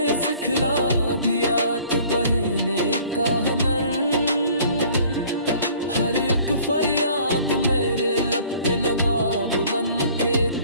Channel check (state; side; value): inverted; both; correlation -0.53